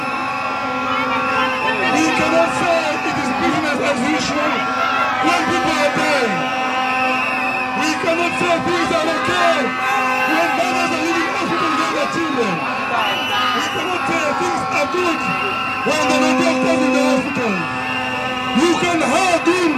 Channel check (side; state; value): both; identical; correlation 1.00